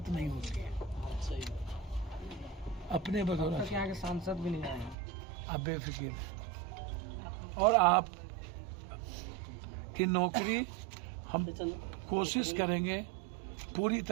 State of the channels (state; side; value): drops out; left; at 5.0 s